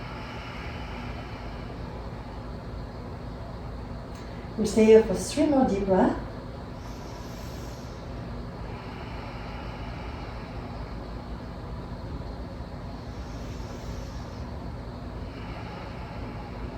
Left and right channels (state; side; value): identical; both; correlation 1.00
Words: We'll stay here for 3 more deep breaths.